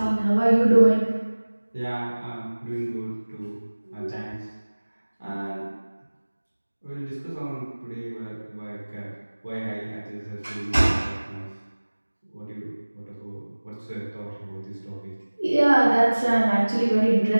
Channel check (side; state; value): both; inverted; correlation -1.00